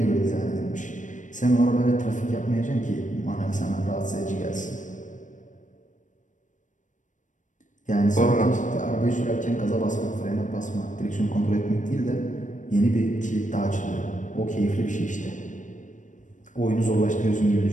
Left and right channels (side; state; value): right; late; 0.37 ms